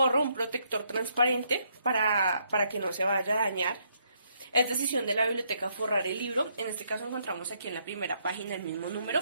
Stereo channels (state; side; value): inverted; both; correlation -0.73